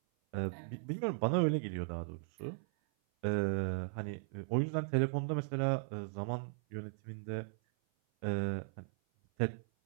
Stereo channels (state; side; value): silent; left; 53 dB below the other